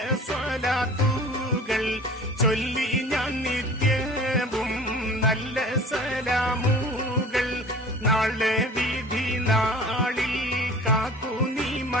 സ്വലാത്തുകൾ ചൊല്ലി ഞാൻ നിത്യവും നല്ല സലാമുകൾ. നാളെ വിധി നാളിൽ കാക്കുനി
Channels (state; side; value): normal; both; correlation 0.43